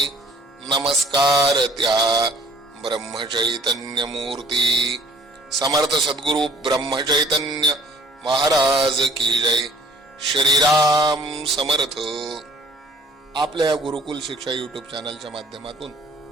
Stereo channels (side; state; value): both; normal; correlation 0.53